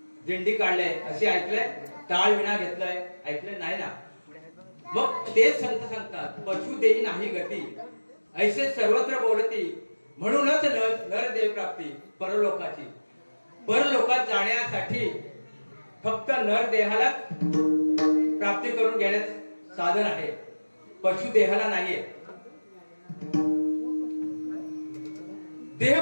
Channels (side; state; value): both; inverted; correlation -1.00